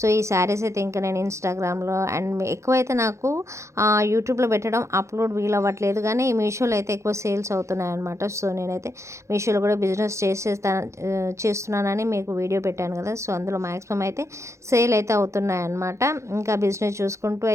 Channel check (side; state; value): left; late; 0.14 ms